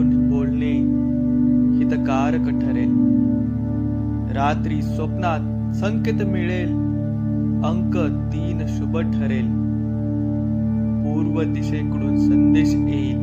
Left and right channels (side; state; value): both; identical; correlation 1.00